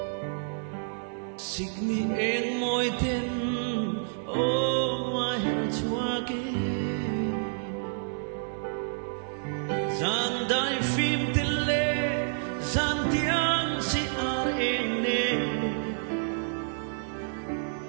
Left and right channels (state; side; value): silent; left; digital silence